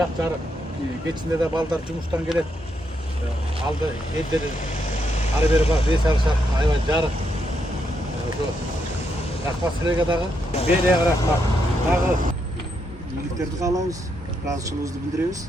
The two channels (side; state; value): both; normal; correlation 0.79